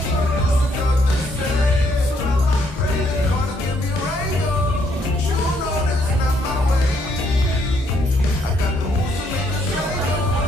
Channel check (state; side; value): normal; both; correlation 0.70